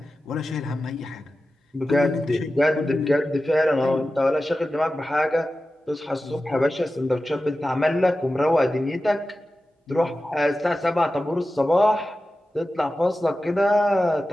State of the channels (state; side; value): normal; both; correlation 0.93